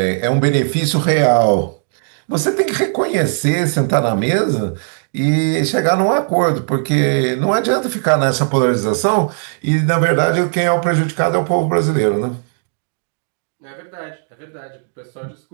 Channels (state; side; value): silent; left; digital silence